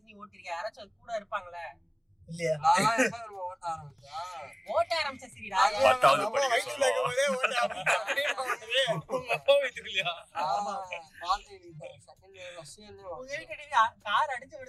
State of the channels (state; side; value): identical; both; correlation 1.00